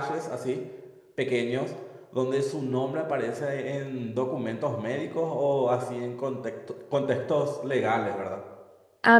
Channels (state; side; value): identical; both; correlation 1.00